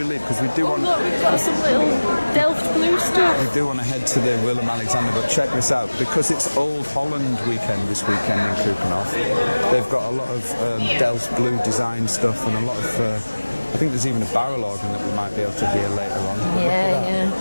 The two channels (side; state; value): both; inverted; correlation -1.00